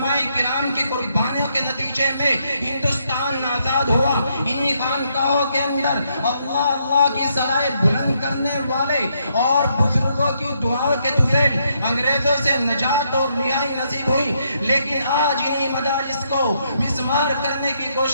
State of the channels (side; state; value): both; inverted; correlation -0.75